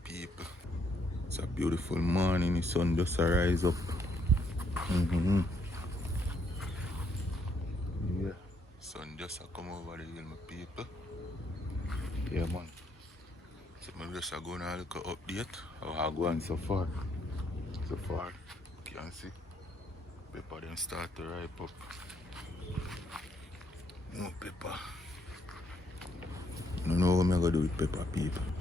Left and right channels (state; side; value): normal; both; correlation 0.72